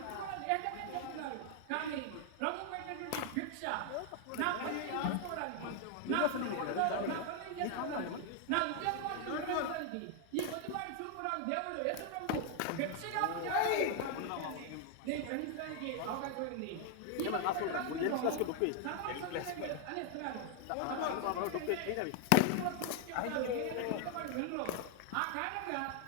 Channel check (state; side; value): different; both; correlation 0.00